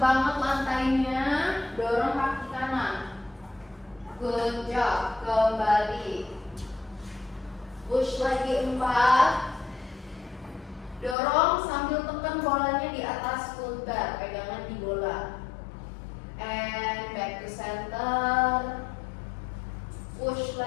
lantainya, dorong kaki kanan. Good job, kembali. Push lagi 4. Dorong sambil tekan bolanya di atas full bar, pegangan di bola. And back to center. Push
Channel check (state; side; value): drops out; right; at 11.2 s